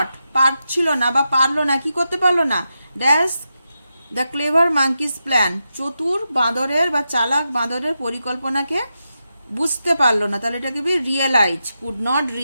পারছিল না বা পারলো না, কি করতে পারলো না, dash the clever monkey's plan, চতুর বাঁদরের বা চালাক বাঁদরের পরিকল্পনাকে বুঝতে পারলো না। তাহলে এটাকে B realise, could not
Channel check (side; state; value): both; inverted; correlation -0.88